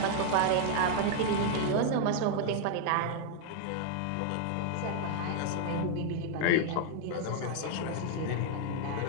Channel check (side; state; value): both; different; correlation 0.00